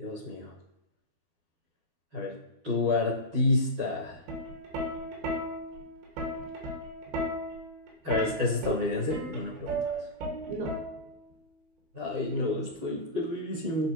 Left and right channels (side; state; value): left; late; 12 ms